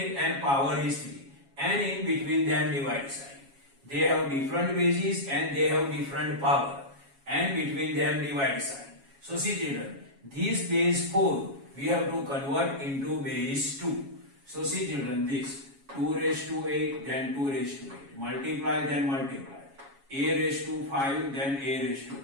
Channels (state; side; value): late; left; 7.3 ms